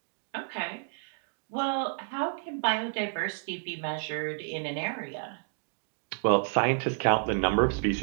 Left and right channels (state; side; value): silent; left; 58 dB below the other